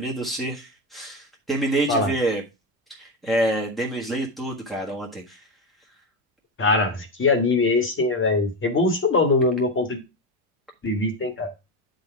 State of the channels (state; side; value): normal; both; correlation 0.15